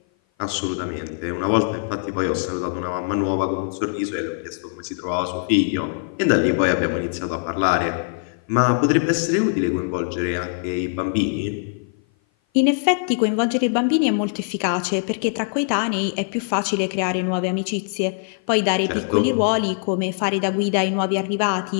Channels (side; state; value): right; silent; 56 dB below the other